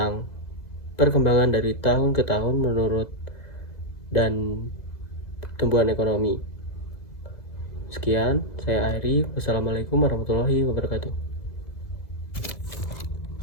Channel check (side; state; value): right; late; 2.0 ms